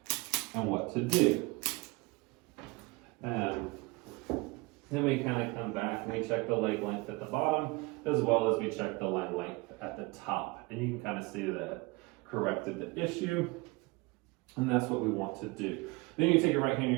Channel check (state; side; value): quieter; left; 24.9 dB